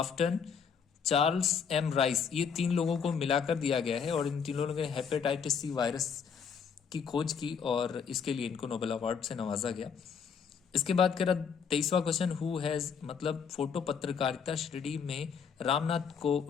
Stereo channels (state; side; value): quieter; right; 6.6 dB